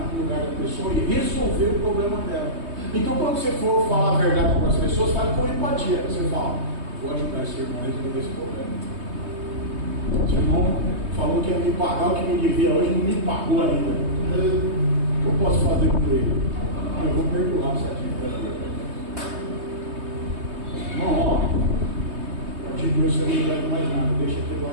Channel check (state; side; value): late; left; 3.2 ms